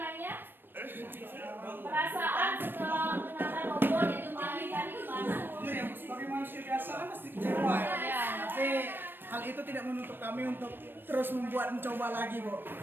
Perasaan setelah menara roboh itu tadi gimana? Sebagai manusia biasa kan pasti kecewa ya. Tapi hal itu tidak menutup kami untuk terus mencoba lagi, Bu.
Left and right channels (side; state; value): left; late; 0.096 ms